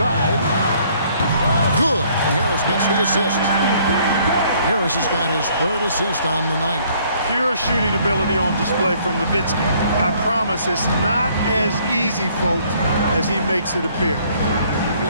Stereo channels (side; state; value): both; inverted; correlation -0.62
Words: Good. And Harris gets the assist. Harris has got his 3rd assist on the night. Pure shooting ability on display from Nowitzki. I promise it's not as easy, folks, as he makes it appear.